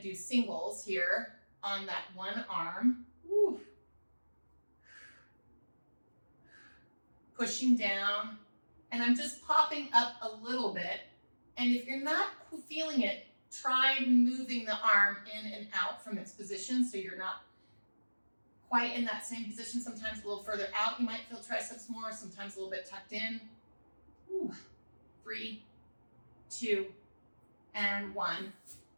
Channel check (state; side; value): inverted; both; correlation -1.00